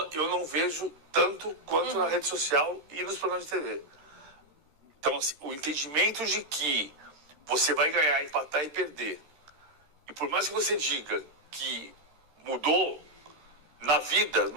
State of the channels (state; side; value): late; left; 13 ms